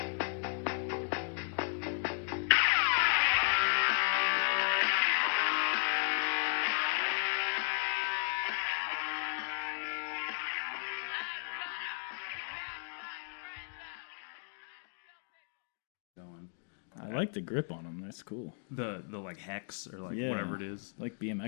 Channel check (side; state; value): right; silent; 55 dB below the other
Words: I like the grip on them. That's cool. The like hex or like whatever it is. Like